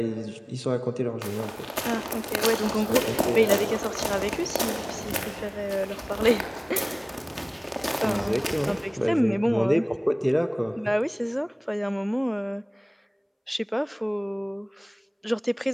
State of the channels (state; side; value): identical; both; correlation 1.00